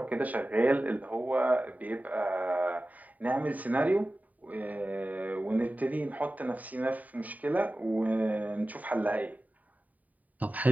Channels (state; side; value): late; left; 0.074 ms